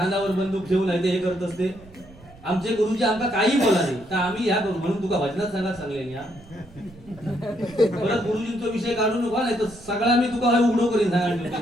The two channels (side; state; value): right; noise; rumble, 22 dB below the sound